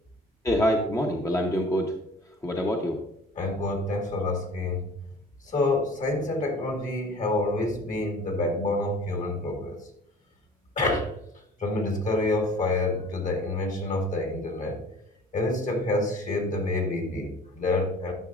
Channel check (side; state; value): both; normal; correlation 0.47